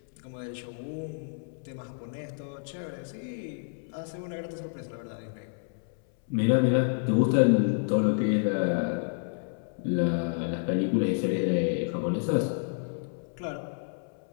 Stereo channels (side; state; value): right; silent; 58 dB below the other